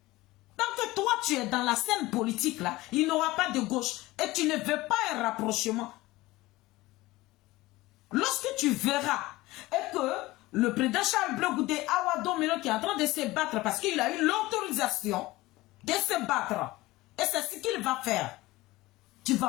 Tant que toi, tu es dans la scène politique, là, il n'y aura pas de gauche. Et tu ne veux pas un rapprochement. Lorsque tu verras et que le président Charles Blé Goudé Awado Melo qui est en train de se battre parce qu'il a eu l'autorisation de se battre. Et c'est ce qu'il va faire. Tu ne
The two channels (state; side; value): quieter; right; 19.2 dB